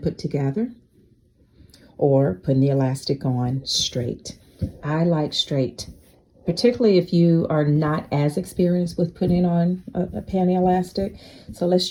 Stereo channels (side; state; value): both; identical; correlation 1.00